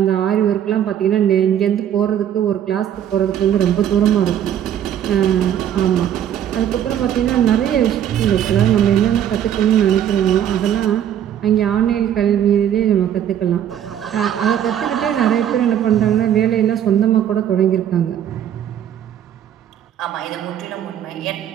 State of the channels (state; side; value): quieter; left; 10.1 dB